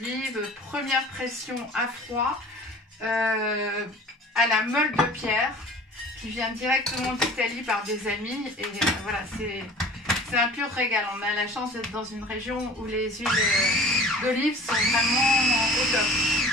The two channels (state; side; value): normal; both; correlation 0.44